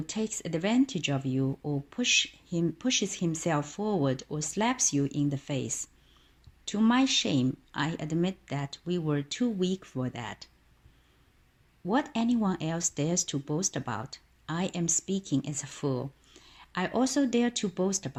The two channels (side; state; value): both; identical; correlation 1.00